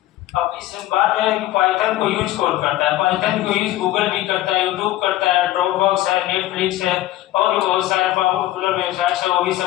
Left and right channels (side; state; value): right; quieter; 15.0 dB